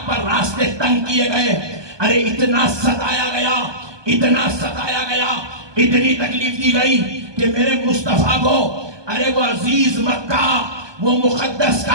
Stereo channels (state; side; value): late; left; 1.2 ms